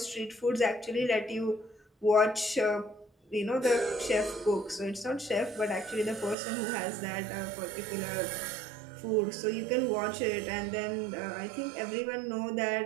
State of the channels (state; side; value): drops out; left; at 6.4 s